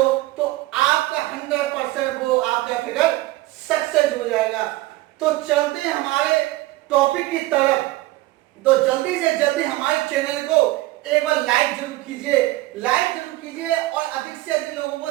तो आपका 100% वो आपका फिगर सक्सेस हो जाएगा। तो चलते हैं हमारे टॉपिक की तरफ। तो जल्दी से जल्दी हमारे चैनल को एक बार लाइक जरूर कीजिए, और अधिक से अधिक लोगों को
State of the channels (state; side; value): quieter; left; 18.3 dB